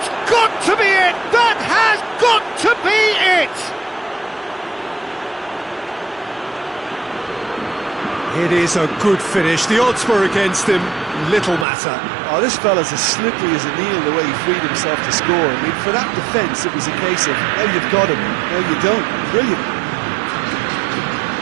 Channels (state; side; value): drops out; left; at 11.7 s